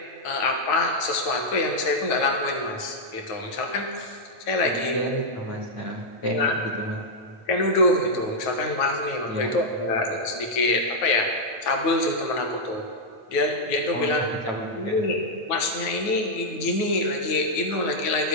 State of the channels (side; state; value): right; late; 9.3 ms